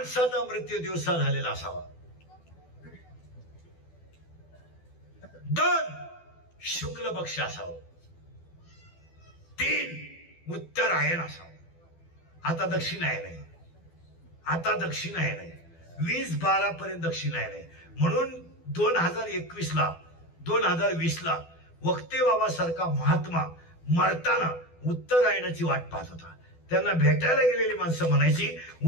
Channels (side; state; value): right; late; 12 ms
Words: मृत्यू दिवसा झालेला असावा. 2, शुक्ल पक्ष असावं. 3, उत्तरायण असावं. आता दक्षिणायन आहे, आता दक्षिणायन आहे. 20-12 पर्यंत दक्षिणायन आहे. म्हणून 2021ला 2020ला वक्ते बाबासारखा महात्मा मरताना उत्तरायणाची वाट पाहत होता. त्यांना भेटायला गेलेली माणसं म्हणायची